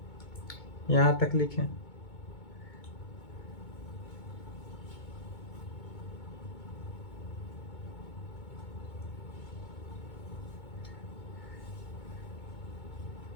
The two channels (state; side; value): late; right; 2.2 ms